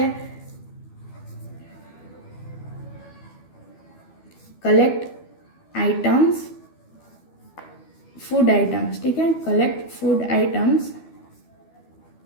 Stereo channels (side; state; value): right; late; 12 ms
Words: कलेक्ट आइटम्स फूड आइटम्स, ठीक है, collect food items